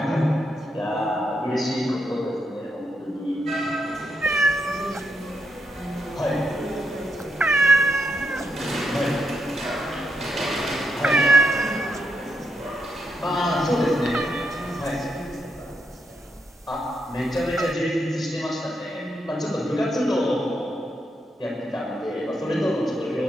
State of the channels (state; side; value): normal; both; correlation 0.80